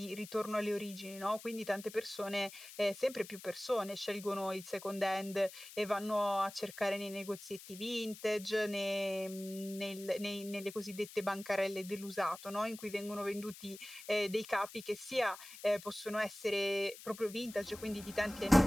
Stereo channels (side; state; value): left; noise; hiss, 15 dB below the sound